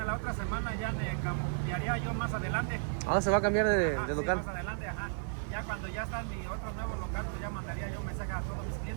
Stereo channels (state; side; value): silent; left; digital silence